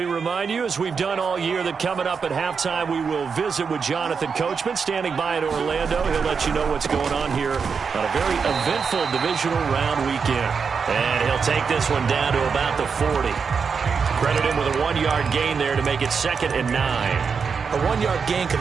remind you, as we've done all year, that coming up at halftime, we will visit with Jonathan Coachman, standing by in Orlando. He'll let you know what's going on here on a very eventful divisional round weekend. And he'll take this one down to about the 40. Credit him with a 1-yard gain there to make it 2nd and 9. A 1-yard gain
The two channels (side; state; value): left; quieter; 5.8 dB